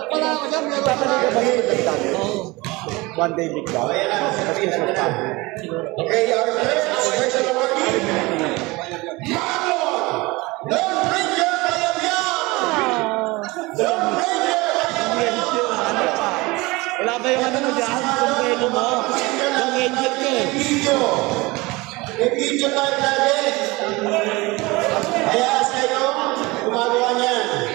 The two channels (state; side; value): quieter; left; 22.9 dB